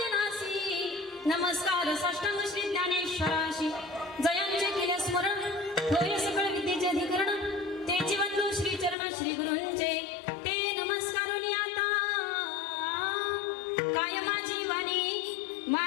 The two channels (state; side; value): drops out; right; at 9.0 s